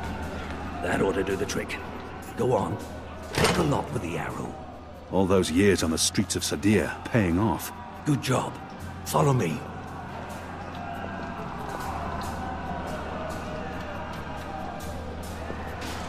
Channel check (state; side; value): identical; both; correlation 1.00